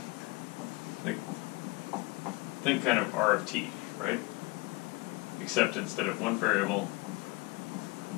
like, think kind of R of t, right? Except instead of one variable,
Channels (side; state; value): right; quieter; 24.1 dB